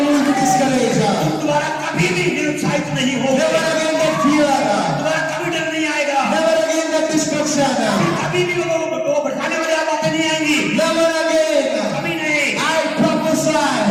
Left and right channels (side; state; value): both; identical; correlation 1.00